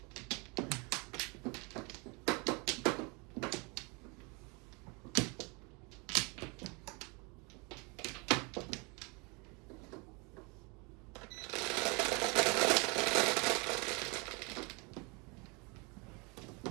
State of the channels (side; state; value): left; quieter; 28.7 dB